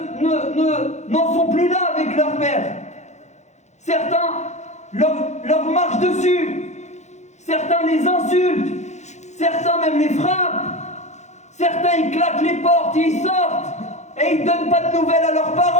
n'en sont plus là avec leur père. Certains leur marchent dessus. Certains les insultent. Certains même les frappent. Certains ils claquent les portes et ils sortent. Et ils ne donnent pas de nouvelles à leurs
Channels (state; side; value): late; right; 0.33 ms